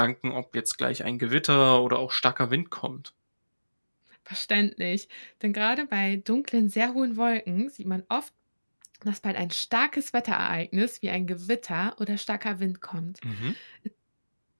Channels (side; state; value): both; inverted; correlation -1.00